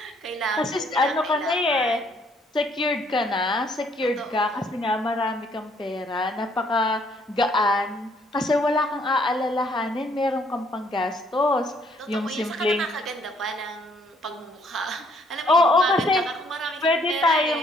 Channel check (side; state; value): both; normal; correlation 0.66